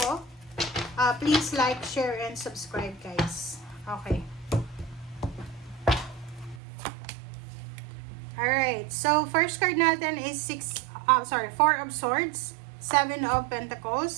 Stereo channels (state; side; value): drops out; left; at 6.6 s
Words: please like, share, and subscribe guys. Okay. Alright, so first card natin is 4 of Swords, 7 of